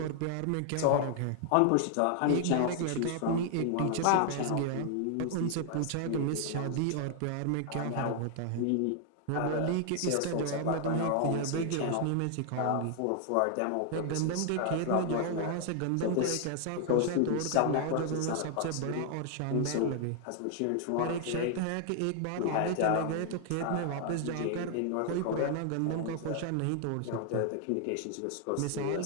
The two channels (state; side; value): different; both; correlation 0.00